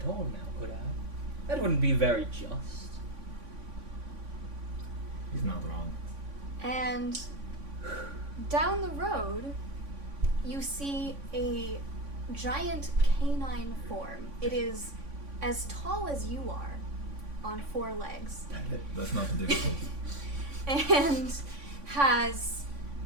it all now, could I? That wouldn't be very just. He's not wrong. And down the road, you see a giant canine form. It is as tall as you are, on 4 legs. That's not difficult. And has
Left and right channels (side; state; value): left; late; 3.5 ms